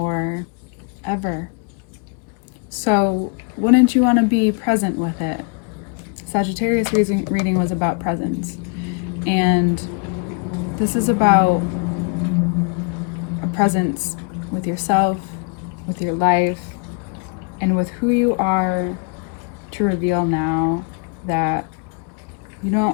ever. So wouldn't you want to be present with it? Sagittarius reading was about presence. And this is about a presence with yourself, with your life, and with who you are, to reveal now that you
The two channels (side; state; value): right; quieter; 37.0 dB